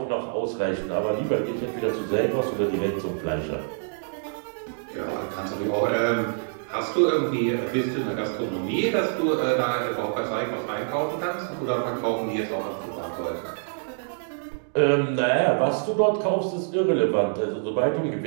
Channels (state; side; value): silent; left; digital silence